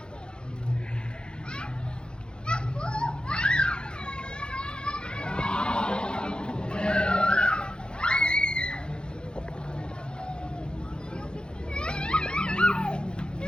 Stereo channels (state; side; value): late; right; 0.049 ms